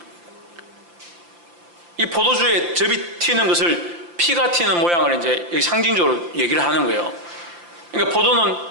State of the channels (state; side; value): late; left; 5.8 ms